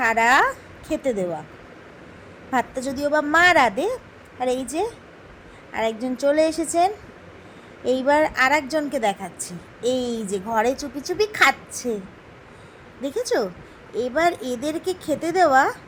খেতে দেওয়া। ভাতটা যদিও বা মা রাঁধে। আর এই যে আরেকজন চলে এসেছেন, এইবার আর একজনকে দেখাচ্ছি। এই যে ঘরে চুপি চুপি খাচ্ছে, দেখেছো? এবার এদেরকে খেতে দেওয়া।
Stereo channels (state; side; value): identical; both; correlation 1.00